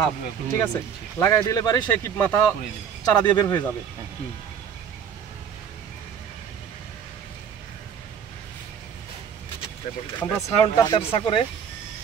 ঠিক আছে, লাগাই দিলে পারি সে কি মাথা চারা দিয়ে বের হয়ে যাবে। আমরা ছায়নটা তেরসা করে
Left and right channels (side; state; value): left; quieter; 7.8 dB